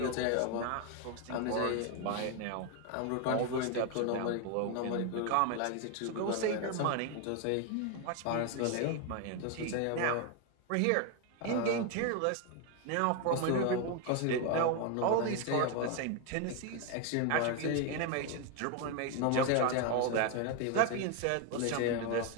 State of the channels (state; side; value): different; both; correlation 0.01